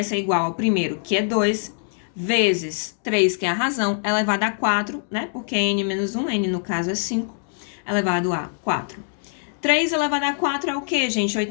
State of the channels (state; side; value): silent; right; digital silence